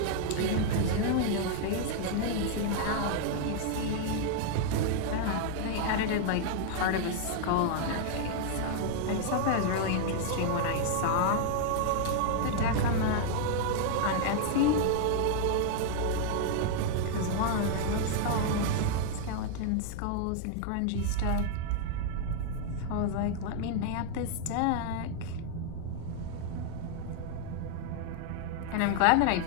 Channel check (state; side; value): different; both; correlation 0.00